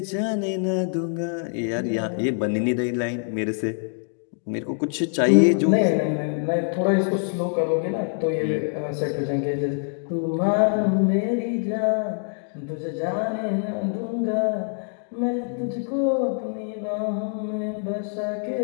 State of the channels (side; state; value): right; silent; 58 dB below the other